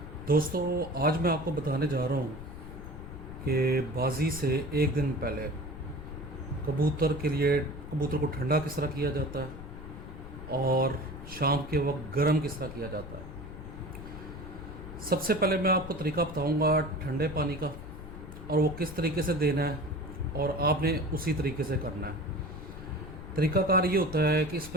दोस्तों। आज मैं आपको बताने जा रहा हूँ कि बाजी से एक दिन पहले कबूतर को ठंडा किस तरह किया जाता है और शाम के वक्त गर्म किस तरह किया जाता है। सबसे पहले मैं आपको तरीका बताऊँगा ठंडे पानी का, और वो किस तरीके से देना है और आपने उसी तरीके से करना है। तरीकाकार ये होता है कि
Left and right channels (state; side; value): noise; left; rumble, 12 dB below the sound